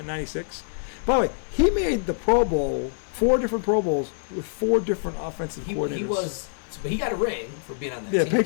'96. By the way, he made the Pro Bowl, 4 different Pro Bowls with 4 different offensive coordinators. But he got a ring for being on that team. Yeah,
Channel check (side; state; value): right; silent; digital silence